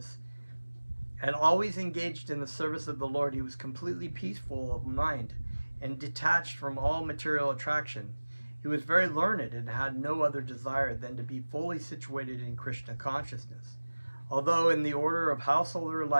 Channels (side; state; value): both; inverted; correlation -1.00